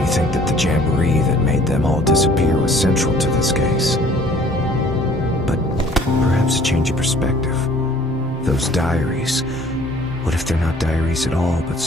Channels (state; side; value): normal; both; correlation 0.55